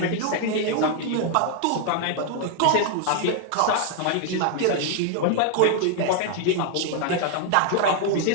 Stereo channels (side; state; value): both; different; correlation 0.00